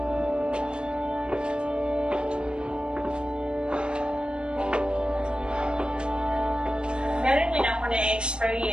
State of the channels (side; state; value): left; late; 0.054 ms